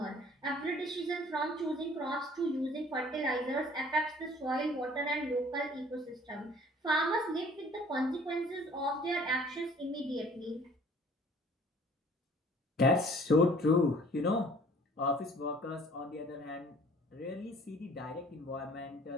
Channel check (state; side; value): normal; both; correlation 0.53